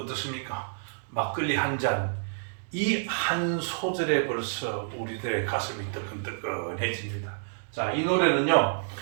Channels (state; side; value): silent; left; digital silence